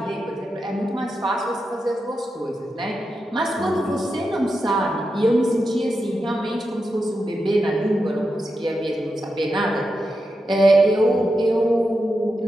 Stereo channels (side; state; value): both; normal; correlation 0.88